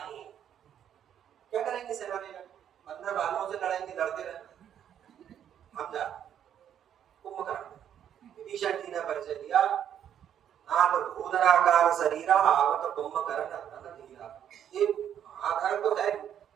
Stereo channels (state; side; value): quieter; left; 9.6 dB